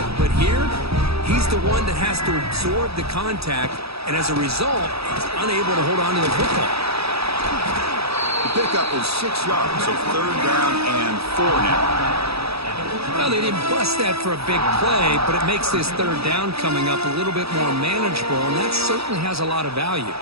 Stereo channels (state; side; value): late; left; 0.77 ms